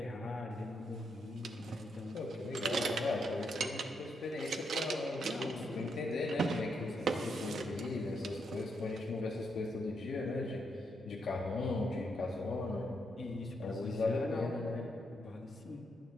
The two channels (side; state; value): both; normal; correlation 0.79